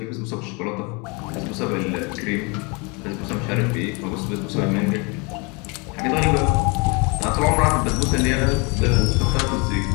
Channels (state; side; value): quieter; right; 30.3 dB